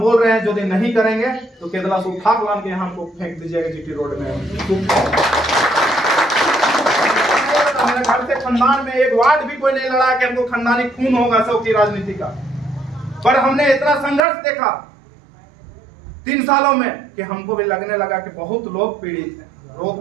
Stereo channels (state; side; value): drops out; left; at 14.2 s